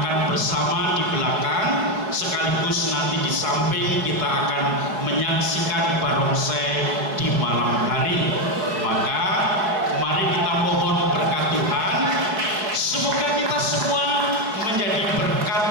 bersama di belakang, sekaligus nanti di samping kita akan menyaksikan barongsai di malam hari. Maka mari kita mohon berkat Tuhan, semoga kita semua menjadi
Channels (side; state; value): left; late; 4.6 ms